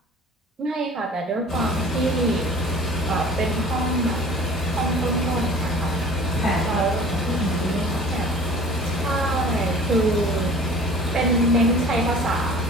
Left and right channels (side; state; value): both; normal; correlation 0.46